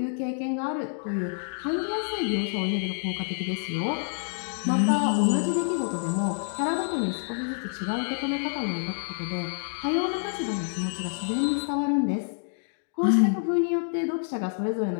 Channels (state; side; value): silent; right; digital silence